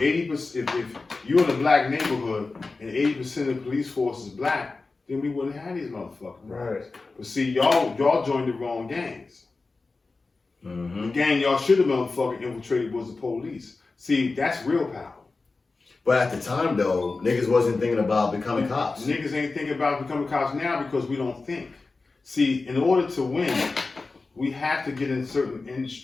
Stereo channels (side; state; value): right; quieter; 3.8 dB